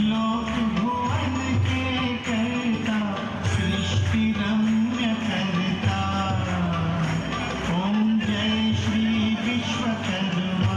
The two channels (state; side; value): identical; both; correlation 1.00